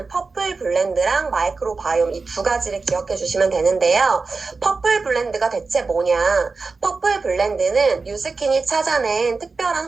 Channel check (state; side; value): quieter; left; 4.2 dB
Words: 퍼플 블렌드랑 마이크로바이옴 이 두 가지를 기억해 주시면 되는데요. 퍼플 블렌드가 대체 뭐냐? 퍼플 블렌드는 뉴스킨이 찾아낸